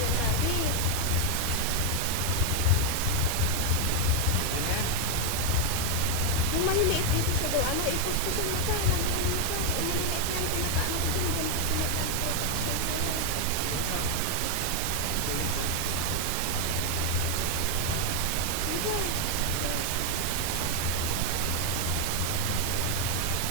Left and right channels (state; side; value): different; both; correlation 0.00